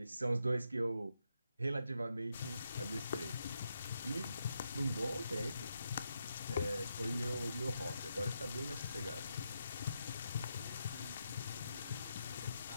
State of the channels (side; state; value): both; inverted; correlation -0.83